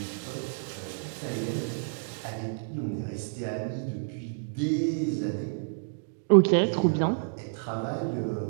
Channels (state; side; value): silent; left; digital silence